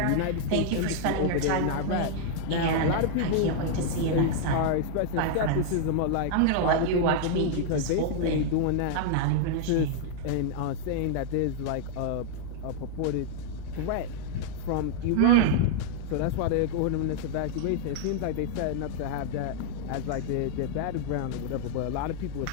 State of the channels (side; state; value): both; different; correlation -0.01